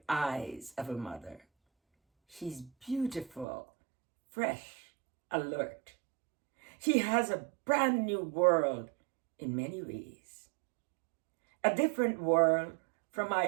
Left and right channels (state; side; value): drops out; left; at 3.5 s